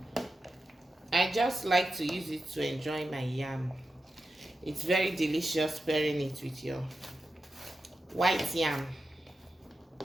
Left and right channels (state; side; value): normal; both; correlation 0.90